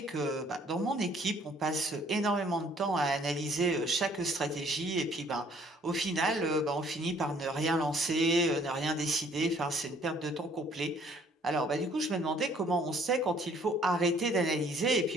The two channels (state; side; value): normal; both; correlation 0.60